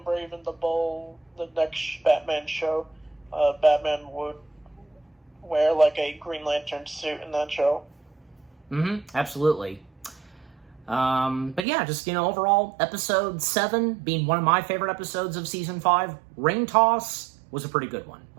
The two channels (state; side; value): drops out; left; at 11.7 s